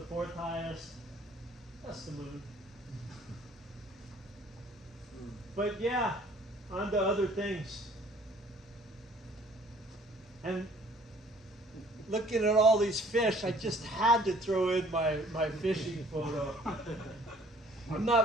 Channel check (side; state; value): both; normal; correlation 0.56